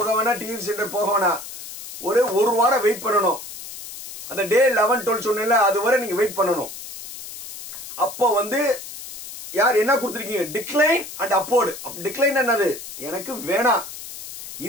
வேணா டிஎஃப்சி சென்டர் போக வேணா ஒரு வாரம் வெயிட் பண்ணணும் அந்த டே 11 12 சொன்னேன்ல அது வரை நீங்க வெயிட் பண்ணணும் அப்போ வந்து யார் என்ன கொடுத்துருக்கீங்க டிக்ளைன் அண்ட் அப்போர்டு டிக்ளைன் என்னது எனக்கு வேணாம்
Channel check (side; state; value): left; noise; hiss, 12 dB below the sound